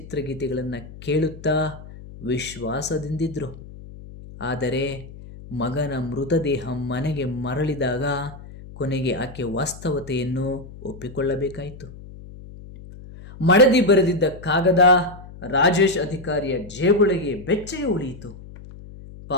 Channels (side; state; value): left; noise; hum, 16 dB below the sound